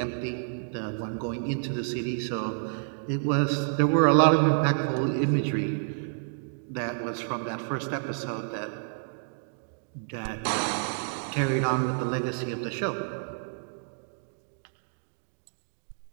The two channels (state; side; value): silent; left; digital silence